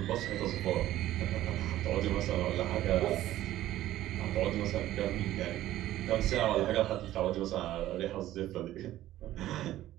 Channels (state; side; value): quieter; left; 14.1 dB